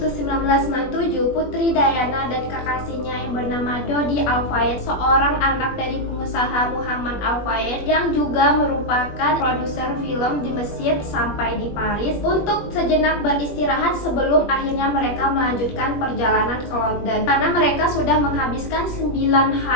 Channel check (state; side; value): late; right; 21 ms